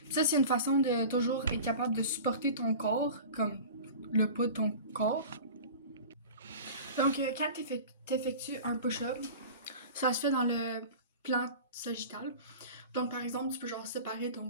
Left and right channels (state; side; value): inverted; both; correlation -0.37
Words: Puis ça, c'est une façon de toujours être capable de supporter ton corps, comme le poids de ton corps. Donc, quand t'effectues un push-up, ça se fait dans le plan sagittal. Donc, par exemple, tu peux genre séparer